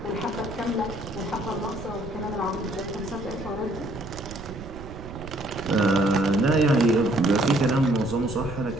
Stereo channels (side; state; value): right; noise; rumble, 13 dB below the sound